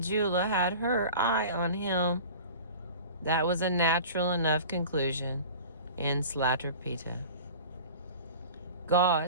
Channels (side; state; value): both; inverted; correlation -0.39